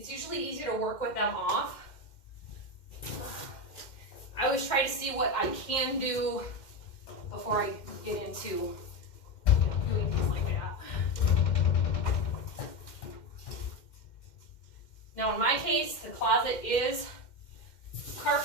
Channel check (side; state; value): right; late; 2.1 ms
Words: usually easier to work with them off. I always try to see what I can do before I get into doing things like that. Now, in my case, the closet is